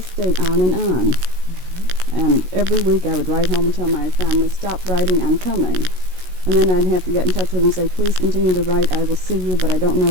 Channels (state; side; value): late; left; 16 ms